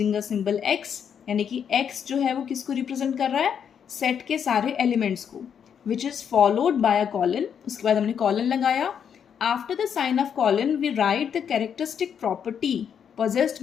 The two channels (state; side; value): quieter; right; 7.9 dB